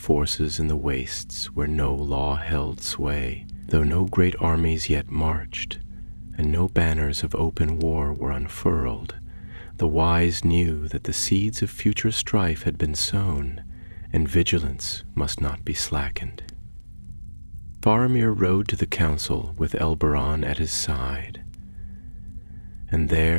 in the wastes where no law held sway, though no great armies yet marched, and no banners of open war were unfurled. The wise knew that the seeds of future strife had been sown, and vigilance must not be slackened. Faramir rode to the council with Elberon at his side, and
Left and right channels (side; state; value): both; inverted; correlation -1.00